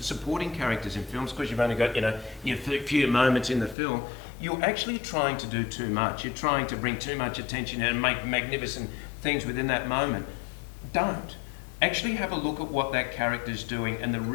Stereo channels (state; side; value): drops out; right; at 3.8 s